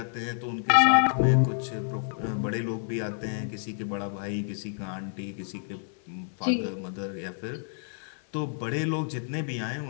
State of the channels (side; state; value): right; silent; 59 dB below the other